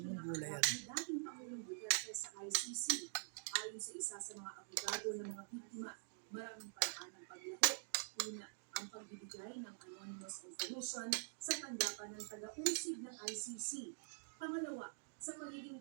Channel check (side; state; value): left; silent; digital silence